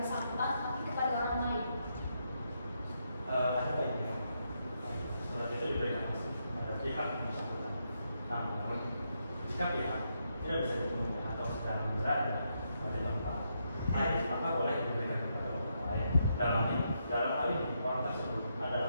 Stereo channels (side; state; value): both; inverted; correlation -0.80